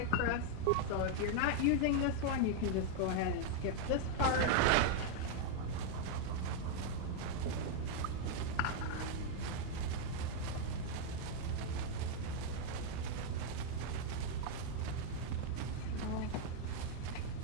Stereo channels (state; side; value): different; both; correlation 0.00